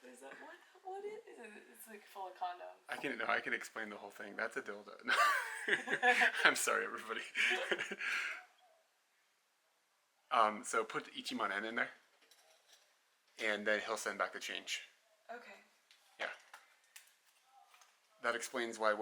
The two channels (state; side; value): identical; both; correlation 1.00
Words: this up. What is it? It's like full of condoms. I can explain the whole thing. That's a dildo. No. I'm sorry, everybody. So put Ichiman N in there. And then he'll send back the change. Okay. Yeah. That explains why